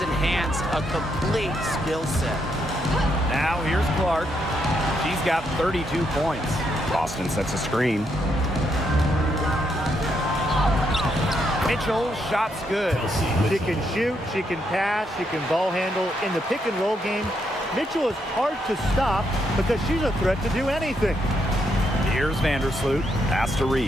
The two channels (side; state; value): both; normal; correlation 0.78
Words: enhanced a complete skill set. Now here's Clark. She's got 32 points. Boston sets a screen. Mitchell, shot's good. She can shoot, she can pass, she can ball handle. In the pick and roll game, Mitchell is hard to stop because she's a threat to do anything. Here's Vandersloot. Pass to